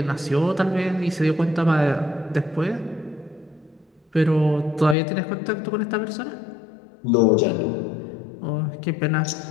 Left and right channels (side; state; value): right; drops out; at 5.0 s